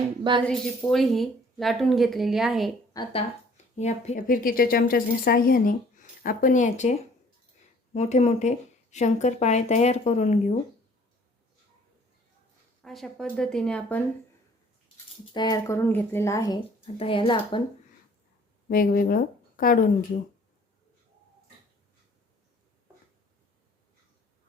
बाजरीची पोळी ही लाटून घेतलेली आहे। आता या फिरकीच्या चमच्याच्या साहाय्याने आपण याचे मोठे मोठे शंकरपाळे तयार करून घेऊ। अशा पद्धतीने आपण तयार करून घेतलेला आहे। आता याला आपण वेगवेगळं काढून घेऊ।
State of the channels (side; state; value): both; normal; correlation 0.55